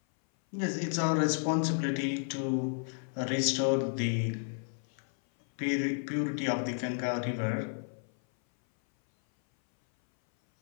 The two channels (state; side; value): silent; right; 56 dB below the other